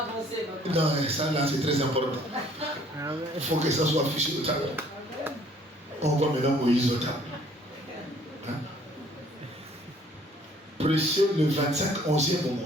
papa. Non, ça là c'est très important. Il faut que ça soit affiché au tableau. On voit maintenant Moïse au tableau. Hein? Prêcher le 25, 11e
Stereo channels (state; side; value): normal; both; correlation 0.58